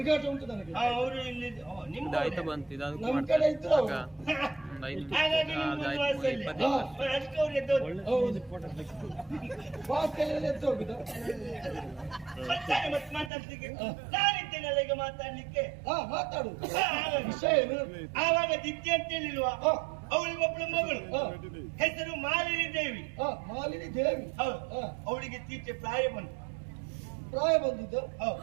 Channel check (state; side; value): drops out; left; at 13.3 s